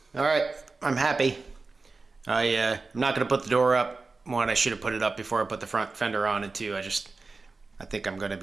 All right, I'm happy. I'm not gonna put the door up. One, I should have put it up before I put the front fender on, and two, I think I'm gonna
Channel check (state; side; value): quieter; left; 3.9 dB